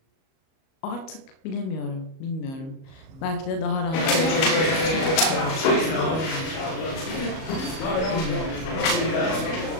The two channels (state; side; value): late; right; 37 ms